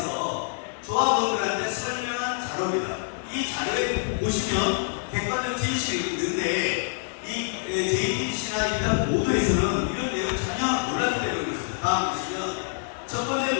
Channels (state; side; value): silent; right; digital silence